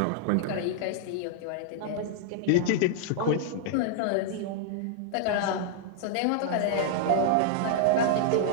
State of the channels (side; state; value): both; different; correlation -0.01